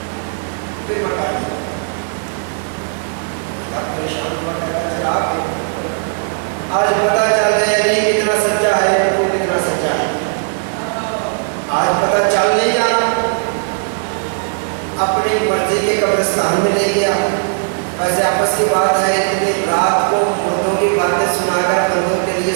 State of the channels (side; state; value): left; silent; digital silence